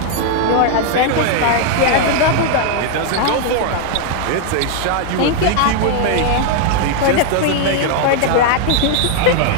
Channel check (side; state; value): both; different; correlation 0.00